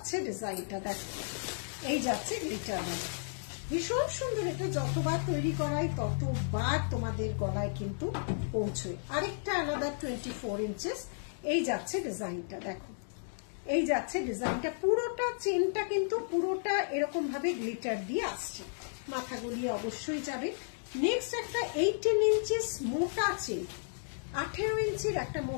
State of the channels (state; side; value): silent; right; digital silence